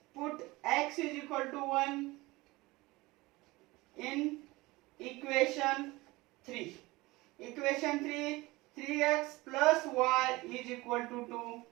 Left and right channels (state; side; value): quieter; left; 21.2 dB